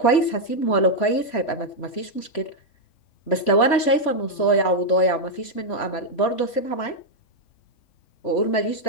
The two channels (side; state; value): right; late; 3.1 ms